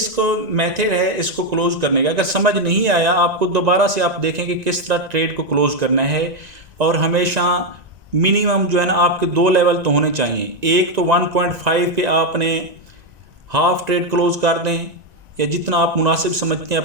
मेथड है इसको क्लोज करने का। अगर समझ नहीं आया आपको, दोबारा से आप देखें कि किस तरह ट्रेड को क्लोज करना है। और हमेशा मिनिमम जो है ना आपके 2 लेवल तो होने चाहिए। एक तो 1.5 पे आपने हाफ ट्रेड क्लोज कर दें, या जितना आप मुनासिब समझते हैं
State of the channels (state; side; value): late; left; 1.9 ms